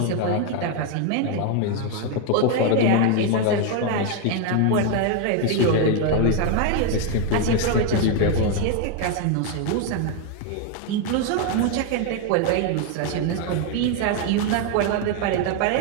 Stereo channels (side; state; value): both; different; correlation 0.01